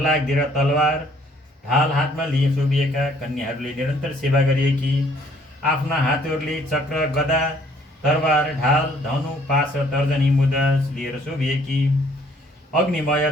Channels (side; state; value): both; normal; correlation 0.61